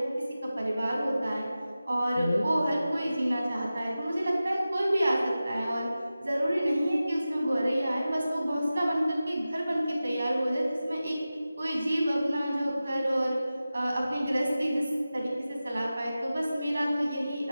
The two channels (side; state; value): both; inverted; correlation -0.95